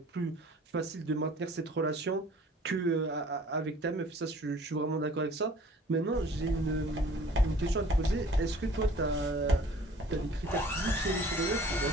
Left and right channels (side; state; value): both; normal; correlation 0.51